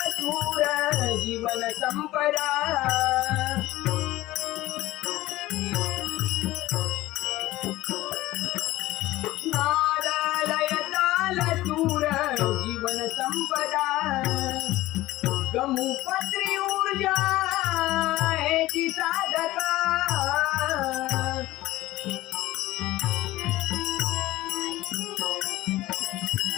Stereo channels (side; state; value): right; quieter; 17.0 dB